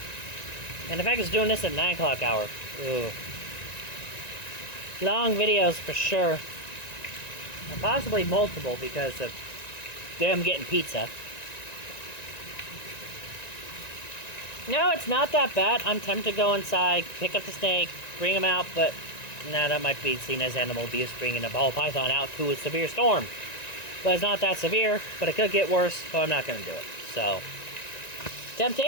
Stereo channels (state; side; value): late; right; 1.9 ms